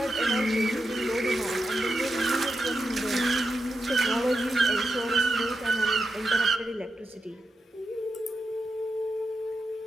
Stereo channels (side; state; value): both; normal; correlation 0.87